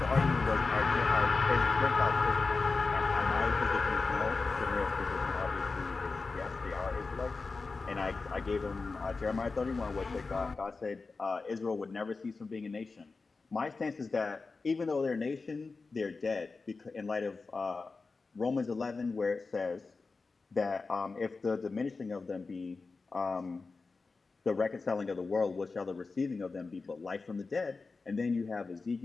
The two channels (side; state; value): right; quieter; 4.1 dB